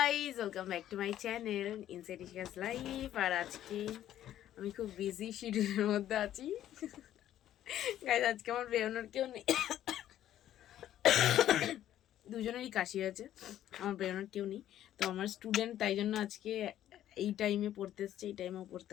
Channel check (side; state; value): right; quieter; 12.0 dB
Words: welcome back to my channel inside Ishika's life. আর আজকে আমি খুব বিজি শিডিউলের মধ্যে আছি গাইজ। আজকে আমার বেরোনোর কেউ নেই, দুজনেরই কাশি আছে, আমার বেরোনোর কেউ নেই। তো আমার স্টুডেন্ট, তাই জন্য আজকে এই টাইমে পড়তে এসছে, এই টাইমেও পড়তে